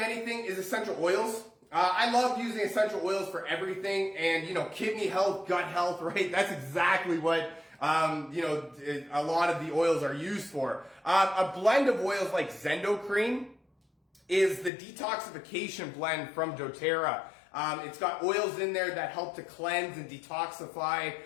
anything is essential oils. I love using essential oils for everything, and kidney health, gut health, right? That's exactly what a lot of the oils are used for. A blend of oils like Zendocrine is the detoxification blend from doTERRA. It's got oils in there that help to cleanse and detoxify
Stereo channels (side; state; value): right; drops out; at 14.7 s